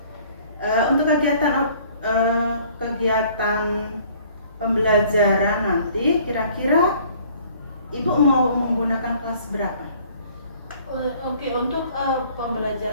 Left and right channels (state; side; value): inverted; both; correlation -0.56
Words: Untuk kegiatan pembelajaran nanti, kira-kira Ibu mau menggunakan kelas berapa? Oke, untuk